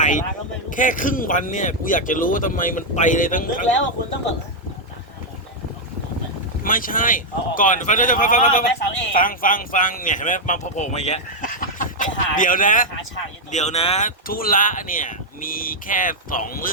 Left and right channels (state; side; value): normal; both; correlation -0.01